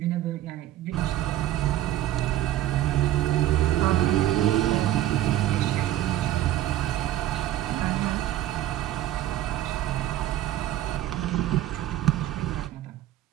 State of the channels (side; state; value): left; quieter; 13.5 dB